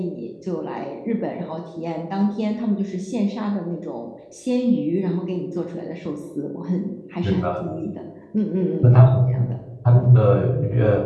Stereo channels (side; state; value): both; identical; correlation 1.00